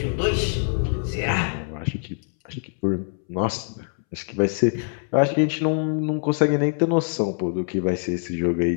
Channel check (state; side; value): silent; right; 63 dB below the other